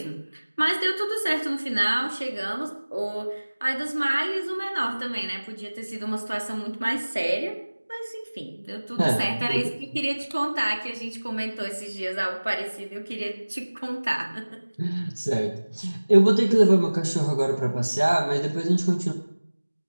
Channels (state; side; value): inverted; both; correlation -1.00